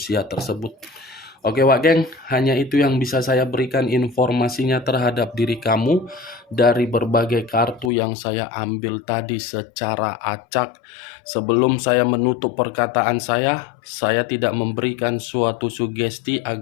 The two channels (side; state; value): right; drops out; at 7.9 s